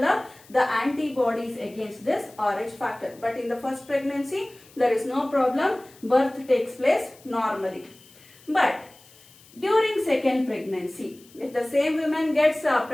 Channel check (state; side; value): noise; left; hiss, 25 dB below the sound